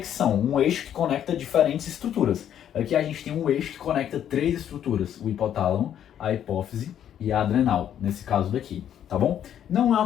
um eixo que conecta diferentes estruturas. Aqui a gente tem um eixo que conecta três estruturas, o hipotálamo, a hipófise e a adrenal, nesse caso daqui, tá bom? Não é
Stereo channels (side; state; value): right; quieter; 10.0 dB